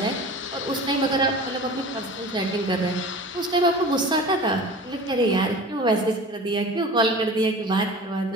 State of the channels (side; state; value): both; normal; correlation 0.38